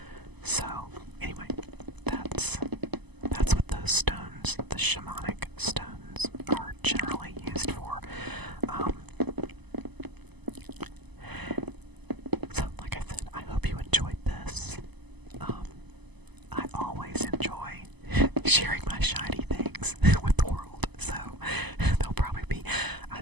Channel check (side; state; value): left; late; 0.99 ms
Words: So anyway, that's what those stones, the shamanic stones, are generally used for. So like I said, I hope you enjoyed this. I always enjoy sharing my shiny things with the world, so there'll probably be, I